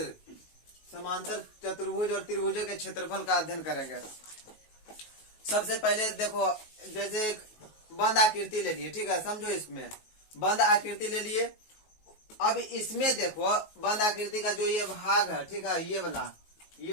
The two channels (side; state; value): right; late; 19 ms